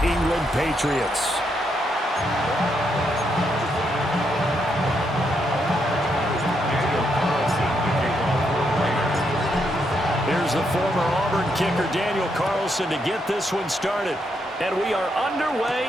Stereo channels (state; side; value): normal; both; correlation 0.78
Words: England Patriots. Here's the former Auburn kicker Daniel Carlson to get this one started. And we are